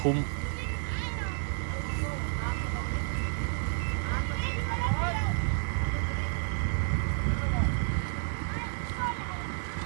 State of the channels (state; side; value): silent; left; digital silence